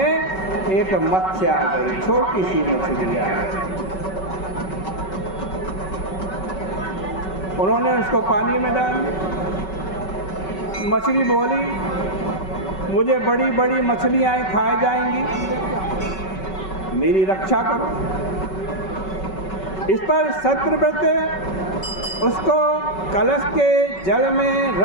एक मत्स्य आ गई, छोटी सी मछली आ गई। उन्होंने उसको पानी में डाल दिया। मछली बोली, मुझे बड़ी बड़ी मछलियां खाई जाएंगी, मेरी रक्षा करो। इस पर सत्यव्रत उसको कलश के जल में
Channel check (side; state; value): right; late; 5.3 ms